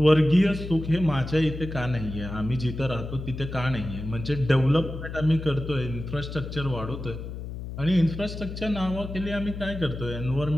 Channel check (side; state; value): left; noise; hum, 8 dB below the sound